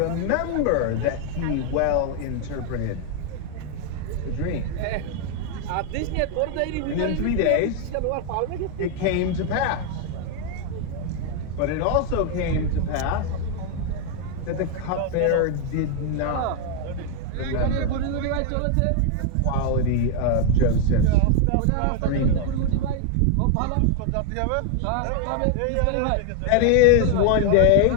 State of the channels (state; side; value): different; both; correlation 0.00